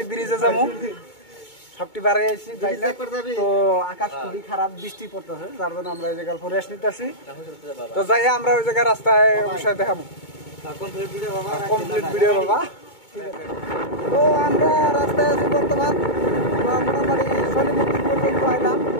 ব্রিজে যাবো। সবটি বাড়ি আইছি বাইরে। তো আকাশ খুবই খারাপ, বৃষ্টি পড়তেছে, যার জন্য আমরা এই জায়গায় রেস্ট নিতেছি। তো যাই আমরা ওই জায়গায় রাস্তায় অবশ্যই দেখাবো কমপ্লিট ভিডিও বাবা। তো আমরা রাস্তায় আছি বর্তমান। মোটামুটি শনি মন্দির পর্যন্ত আইলাম,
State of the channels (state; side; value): late; right; 2.2 ms